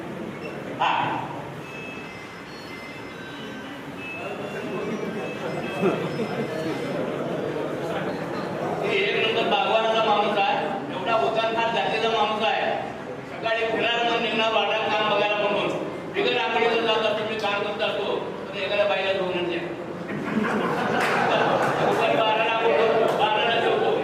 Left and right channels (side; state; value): both; identical; correlation 1.00